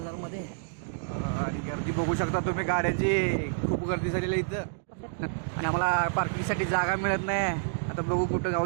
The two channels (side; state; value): left; silent; digital silence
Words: मध्ये. आणि गर्दी बघू शकता तुम्ही, गाड्यांची खूप गर्दी झालेली आहे इथं. आणि आम्हाला पार्किंगसाठी जागा मिळत नाही. आता बघू कुठं